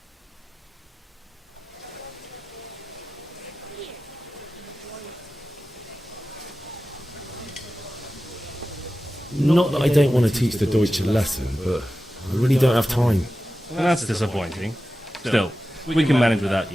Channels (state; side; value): normal; both; correlation 0.94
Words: Not that I don't want to teach the Deutsch a lesson, but I really don't have time. Well, that's disappointing. Still, we can manage without